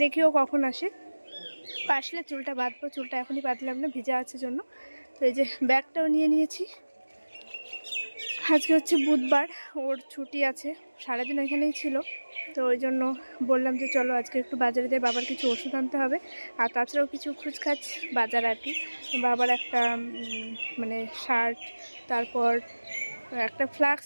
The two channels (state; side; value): inverted; both; correlation -1.00